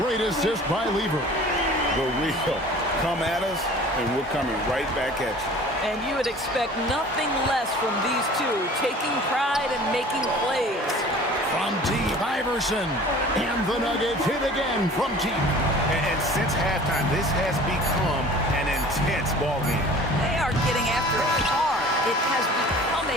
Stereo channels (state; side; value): normal; both; correlation 0.45